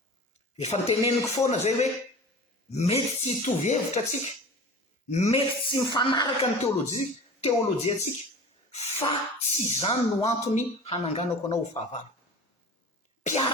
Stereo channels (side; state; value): both; normal; correlation 0.38